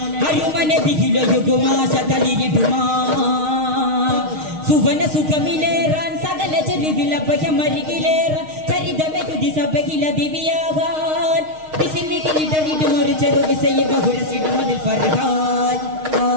Ayumane bigilo yuguma shataliriduma. Suvana sukamileran sagala cherivila bayamarigileran charidame yudi sabagila diviyagan bisimikili daridumor cheru visaya bahurasidu madil farhan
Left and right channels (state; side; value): late; left; 6.4 ms